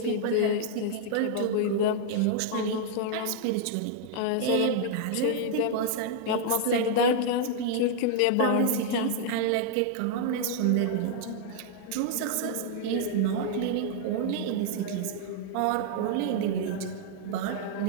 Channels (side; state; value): both; different; correlation -0.01